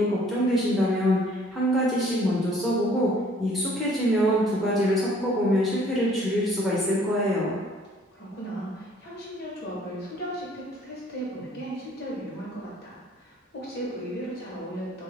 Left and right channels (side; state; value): both; normal; correlation 0.58